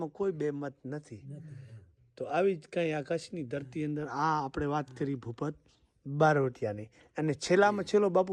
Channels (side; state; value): both; identical; correlation 1.00